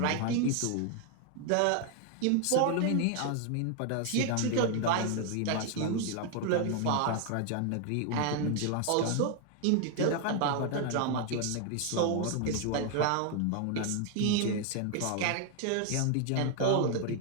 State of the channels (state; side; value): different; both; correlation 0.01